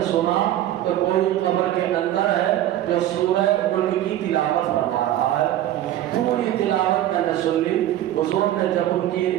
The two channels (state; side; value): quieter; left; 12.9 dB